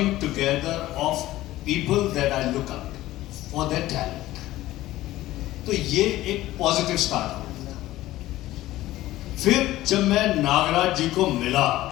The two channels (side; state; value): right; quieter; 15.9 dB